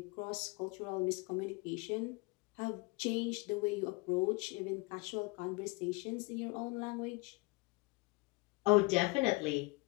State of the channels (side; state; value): right; quieter; 26.8 dB